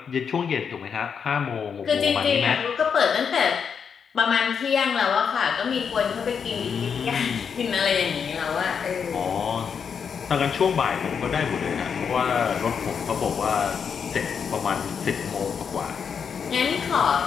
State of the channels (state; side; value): quieter; right; 6.7 dB